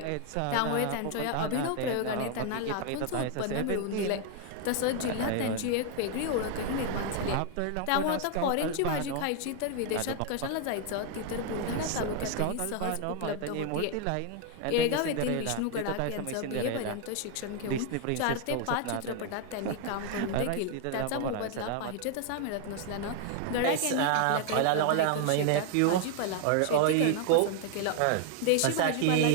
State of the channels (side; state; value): both; different; correlation 0.00